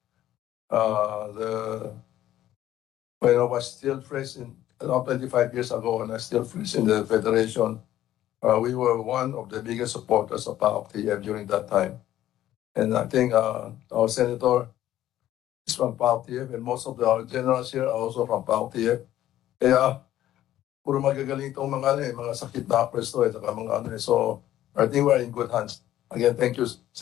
when I was still fresh in around 25 years ago, and I still fresh in the Federation, we were one of the biggest supporters of PAOK-TF during that time. And I think our senator is from PAOK-TF, and most of our generals here are also from PAOK-TF. Kaya, puro magagaling itong mga sakit na presto, so I think we're in good hands. Again, thank you,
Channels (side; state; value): right; quieter; 13.0 dB